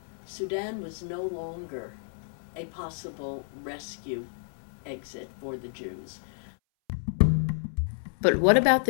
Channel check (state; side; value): silent; right; 58 dB below the other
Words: Sudan was no longer a possible rescue exit for the Jews. But what about